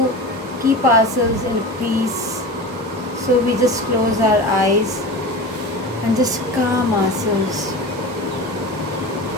keep ourselves in peace, so we just close our eyes and just calm ourselves.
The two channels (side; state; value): both; normal; correlation 0.30